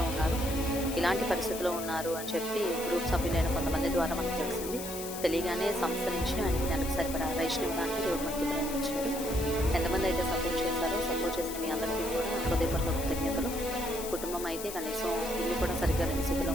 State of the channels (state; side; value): noise; left; hiss, 9 dB below the sound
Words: ఉన్నారు. ఇలాంటి పరిస్థితిలో ఉన్నారు అని చెప్పి గ్రూప్ సభ్యులైన కొంతమంది ద్వారా మనకు తెలిసింది. తెలియగానే సంస్థ నుంచి ఆయనకి నెలకు సరిపడా రేషన్ ఇవ్వడానికి దేవుడు మనకి ప్రేమించాడు. ఎంతమంది అయితే సపోర్ట్ చేశారో సపోర్ట్ చేసిన మీ అందరికీ కూడా హృదయపూర్వక కృతజ్ఞతలు. కుటుంబం అయితే కనీసం ఇల్లు కూడా సరిగ్గా లేని స్థితిలో